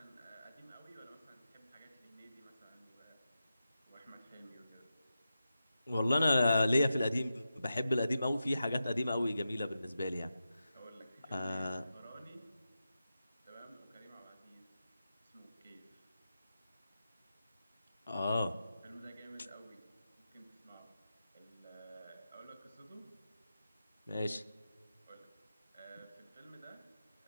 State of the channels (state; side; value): inverted; both; correlation -0.90